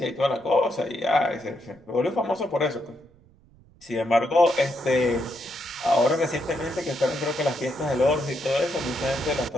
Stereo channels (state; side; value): noise; right; rumble, 28 dB below the sound